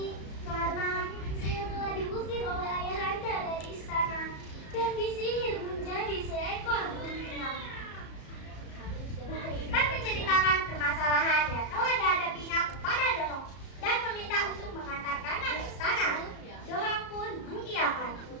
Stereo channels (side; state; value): right; late; 34 ms